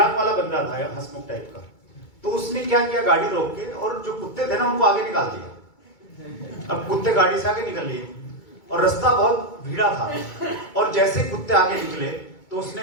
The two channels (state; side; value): late; right; 2.2 ms